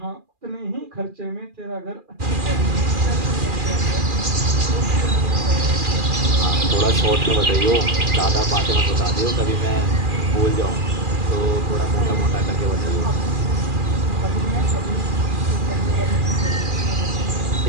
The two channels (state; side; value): late; left; 2.4 ms